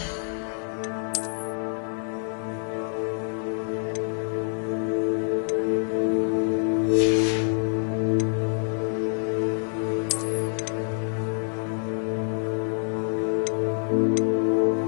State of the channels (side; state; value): right; silent; 61 dB below the other